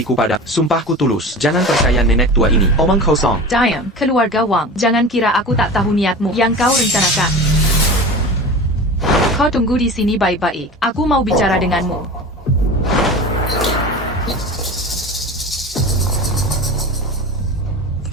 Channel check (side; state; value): both; normal; correlation 0.33